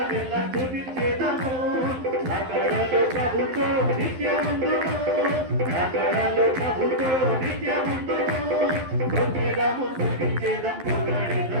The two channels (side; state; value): left; late; 12 ms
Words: స్తుతించెదము రకడలు ప్రభుతో నిత్యముందును రకడలు ప్రభుతో నిత్యముందును ఒకేదము